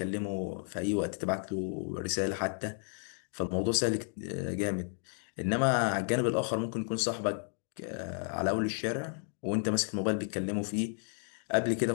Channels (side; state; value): right; silent; 56 dB below the other